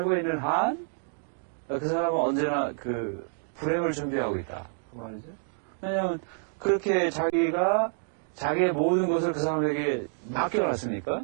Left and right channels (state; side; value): silent; left; digital silence